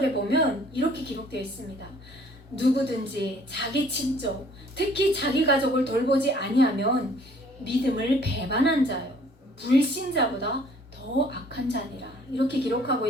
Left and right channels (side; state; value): both; normal; correlation 0.57